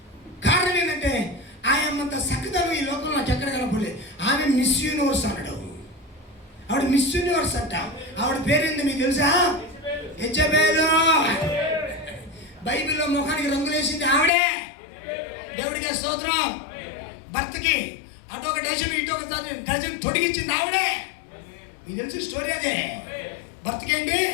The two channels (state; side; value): drops out; right; at 14.3 s